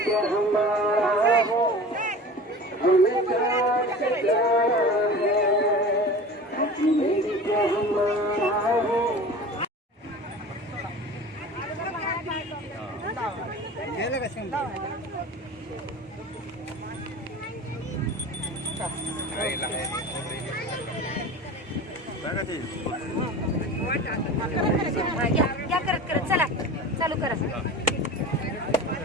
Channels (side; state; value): both; normal; correlation 0.36